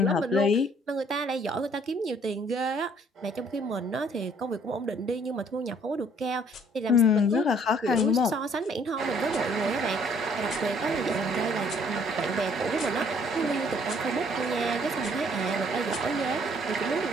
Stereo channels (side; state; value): both; normal; correlation 0.61